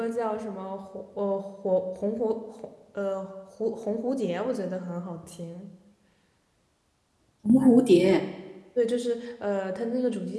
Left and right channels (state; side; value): identical; both; correlation 1.00